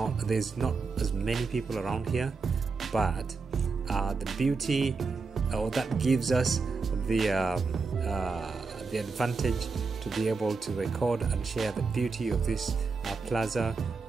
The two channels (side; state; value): left; quieter; 4.5 dB